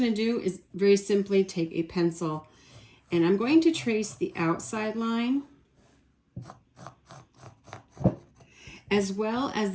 to do is very simply take a pencil, and I'm going to trace the outside line as well as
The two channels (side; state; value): both; identical; correlation 1.00